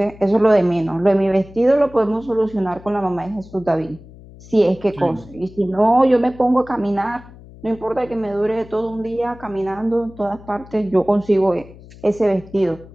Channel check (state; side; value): noise; left; hum, 20 dB below the sound